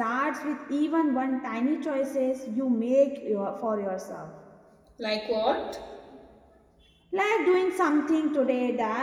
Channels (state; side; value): identical; both; correlation 1.00